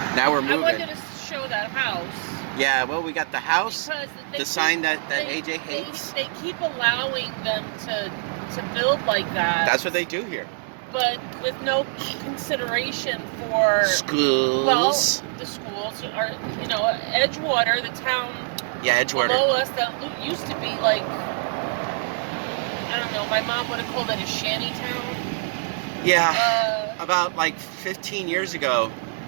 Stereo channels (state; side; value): silent; left; digital silence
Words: now we're moving. I wanted to show that house. Yeah. Well, we got the house, the sign that AJ hates. They keep allowing them to build like that. That's what they do here. But with no consideration for schools. Well, the schools are, Edgewater, the town. Yeah, Edgewater. Below us that used to be like, I don't know. My mom would have called it a shanty town. Yeah. About like 15 years ago,